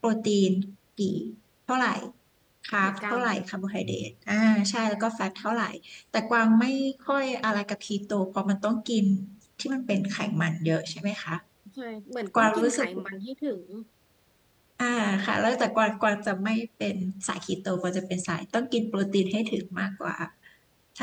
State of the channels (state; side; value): identical; both; correlation 1.00